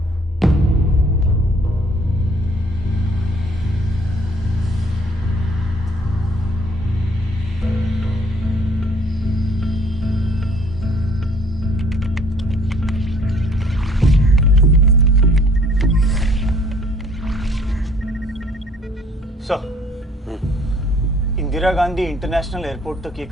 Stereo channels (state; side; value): normal; both; correlation 0.59